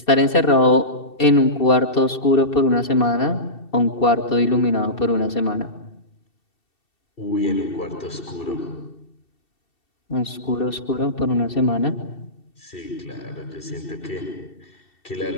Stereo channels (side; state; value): right; late; 2.7 ms